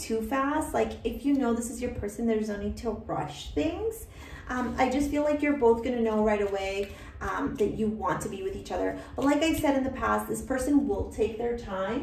fast. Like if you know this is your person, there's no need to rush things. I just feel like you're both gonna know right away that you want to be with each other. But like I said in the past, this person will take their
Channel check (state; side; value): identical; both; correlation 1.00